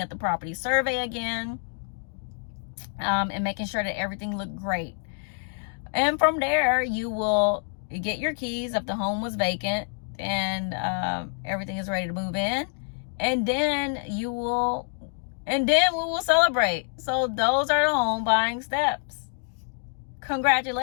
at the property survey again, and making sure that everything looked great. And from there, you will get your keys if the home was vacant and everything is ready to move in. And then we will celebrate. So those are the home buying steps.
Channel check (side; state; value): right; silent; 56 dB below the other